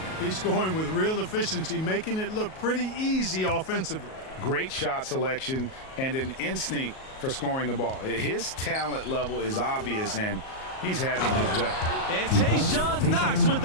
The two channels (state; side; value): late; right; 38 ms